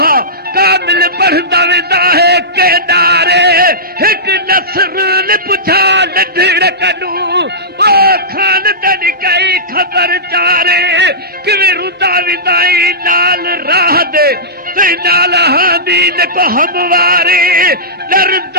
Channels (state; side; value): normal; both; correlation -0.17